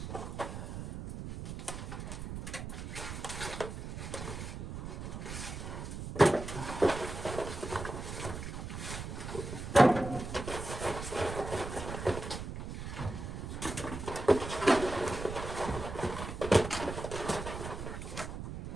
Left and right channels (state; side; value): noise; right; rumble, 7 dB below the sound